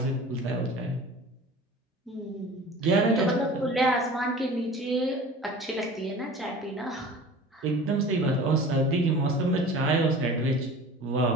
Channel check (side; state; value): both; normal; correlation 0.41